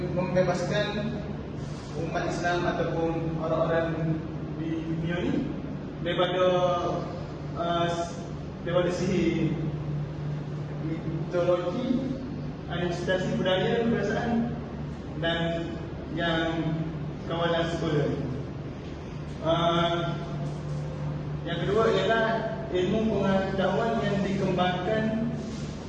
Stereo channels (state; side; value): identical; both; correlation 1.00